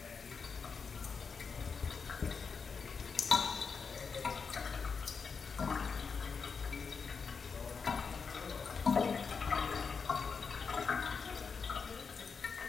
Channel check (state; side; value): quieter; right; 5.5 dB